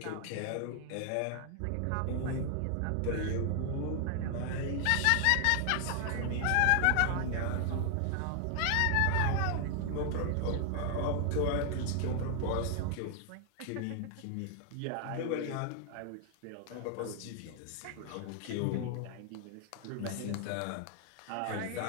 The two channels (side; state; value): both; different; correlation 0.00